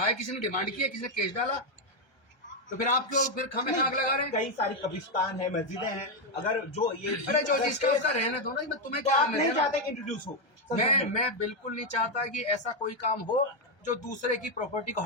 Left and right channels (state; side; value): late; right; 1.3 ms